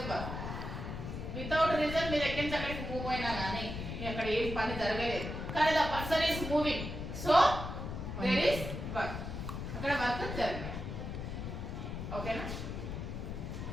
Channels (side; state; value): left; noise; rumble, 6 dB below the sound